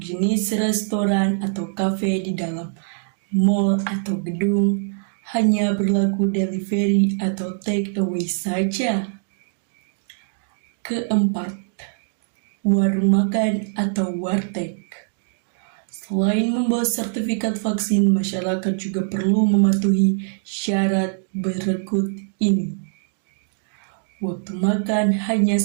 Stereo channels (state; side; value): silent; left; digital silence